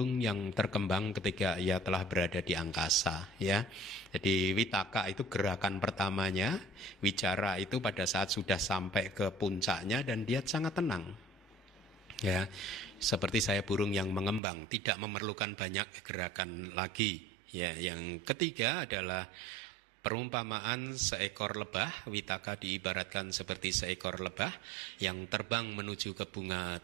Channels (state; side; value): drops out; left; at 14.4 s